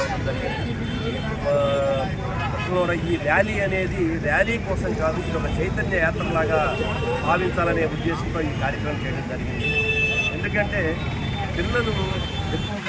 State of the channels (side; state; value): both; identical; correlation 1.00